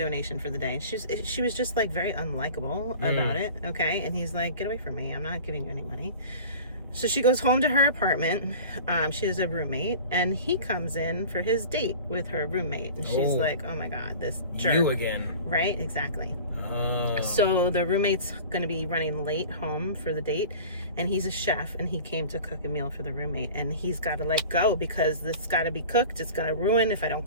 for the day, and she was just like very unlikable about it. Okay. And he's like, get away from me, I'm not giving you any money. So she goes home to her apartment. She has a roommate, and he comes in for his date with her roommate, and she's like, oh my god, this jerk. You again. Right, exactly. Oh. So the roommate's going to be running late home for the date, and he's a chef, and he came to cook a meal for the roommate, and he's got to let go because this got to be cooked. It's going to ruin if I don't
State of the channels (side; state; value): both; inverted; correlation -0.39